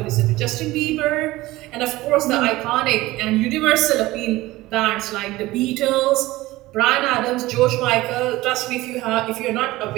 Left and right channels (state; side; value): quieter; left; 18.4 dB